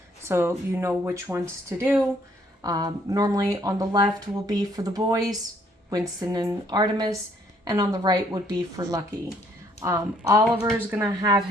so you know which ones to do. Normally on the left will be for the boys, Winston and Artemis, and on the right would be for Lucky. Oliver's gonna have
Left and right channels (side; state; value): both; normal; correlation 0.65